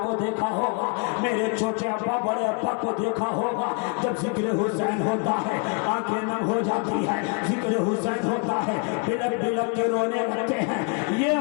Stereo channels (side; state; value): right; quieter; 35.9 dB